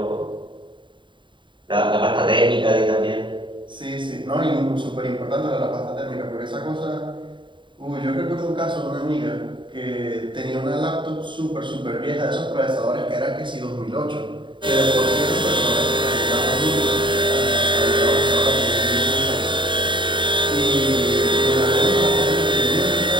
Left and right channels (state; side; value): late; left; 0.23 ms